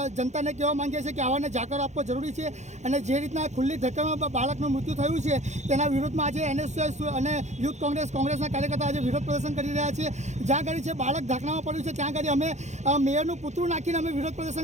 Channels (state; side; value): late; left; 0.33 ms